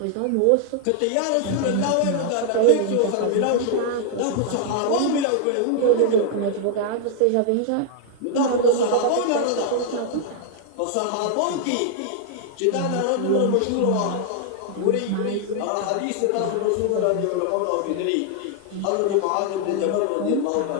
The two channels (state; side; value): different; both; correlation 0.00